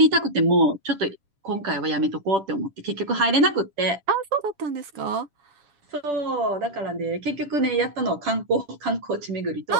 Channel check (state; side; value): late; left; 7.3 ms